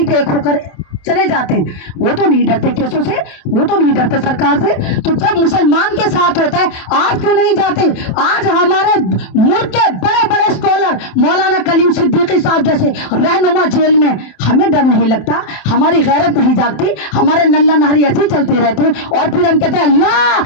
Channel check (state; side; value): late; right; 27 ms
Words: एक होकर चले जाते हैं। वो तो नहीं डरते केसों से, वो तो नहीं डरते सरकार से। तो जब मुसलमान के साथ होता है, आज क्यों नहीं जाते। आज हमारे मुल्क के बड़े बड़े स्कॉलर मौलाना कलीम सिद्दीकी साहब जैसे रहनुमा जेल में, हमें डर नहीं लगता, हमारी गैरत नहीं जागती, हमारे नल्ला नहरी ऐसे चलते रहते हैं। और फिर हम कहते हैं